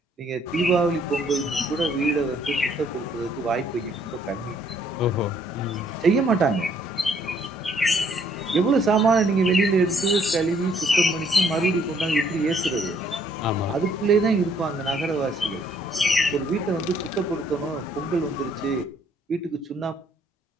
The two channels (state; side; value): normal; both; correlation 0.66